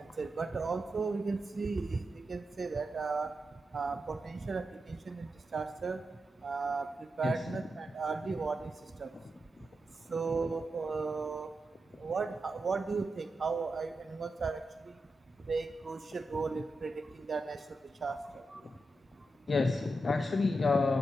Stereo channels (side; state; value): both; normal; correlation 0.88